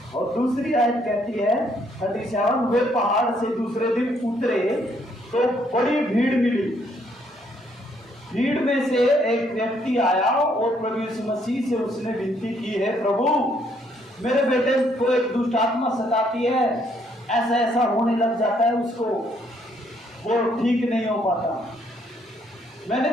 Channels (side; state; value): both; normal; correlation 0.69